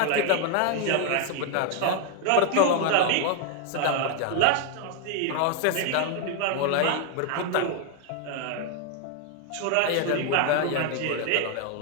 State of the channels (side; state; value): both; different; correlation 0.00